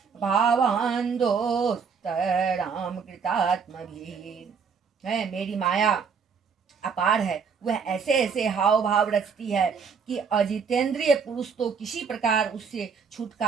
भावान् दोस्तराम कृतात्मभिः। है, मेरी माया अपार है। वह ऐसे ऐसे हाव भाव रचती है कि अजितेंद्रिय पुरुष तो किसी प्रकार उससे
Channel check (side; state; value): left; quieter; 6.0 dB